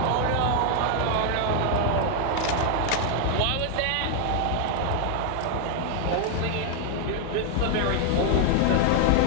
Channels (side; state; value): both; different; correlation 0.00